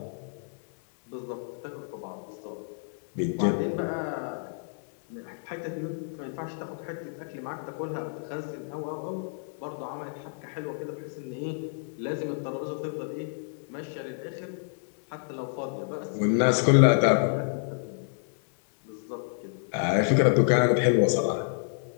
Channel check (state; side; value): silent; right; digital silence